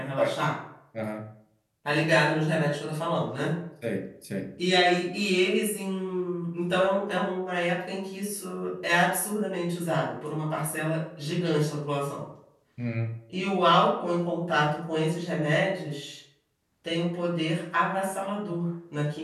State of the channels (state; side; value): identical; both; correlation 1.00